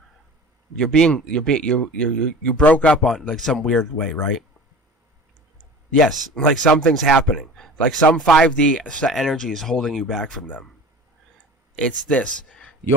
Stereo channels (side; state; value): both; normal; correlation 0.39